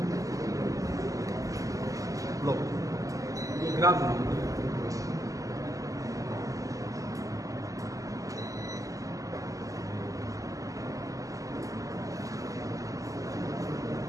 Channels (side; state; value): left; late; 0.16 ms